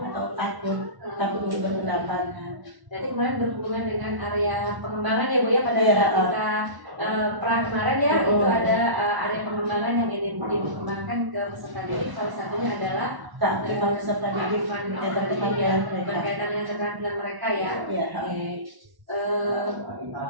atau takut untuk berpendapat. Jadi kemarin berhubungan dengan area pengembangan ya Bu ya, pada Iya, saat kita perang kemarin ya, itu ada area pengembangan yang ingin dikembangkan ke peserta didik. Salah satunya adalah Keaktifan peserta didik berkaitan dengan keterampilan mereka ya. Iya. Oke.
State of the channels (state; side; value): late; left; 1.1 ms